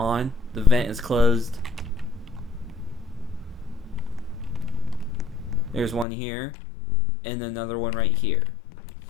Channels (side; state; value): right; drops out; at 6.1 s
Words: The vent is closed. There's one here and another one right here.